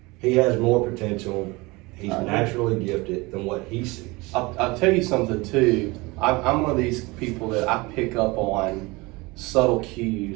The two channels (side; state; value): left; quieter; 23.8 dB